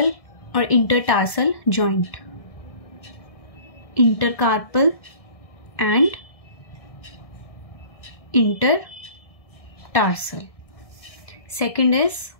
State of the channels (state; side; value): late; right; 1.7 ms